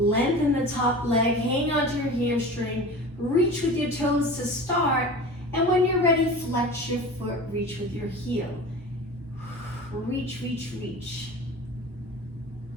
the top leg, hang onto your hamstring, reach with your toes to start, and when you're ready, flex your foot, reach with your heel. Reach, reach, reach.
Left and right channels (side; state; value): both; normal; correlation 0.36